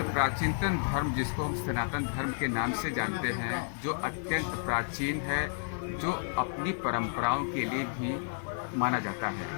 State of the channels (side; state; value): right; silent; digital silence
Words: प्राचीनतम धर्म, जिसको हम सनातन धर्म के नाम से जानते हैं, जो अत्यंत प्राचीन है, जो अपनी परंपराओं के लिए भी माना जाता है।